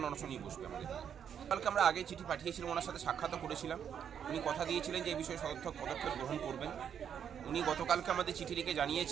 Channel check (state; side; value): quieter; left; 8.3 dB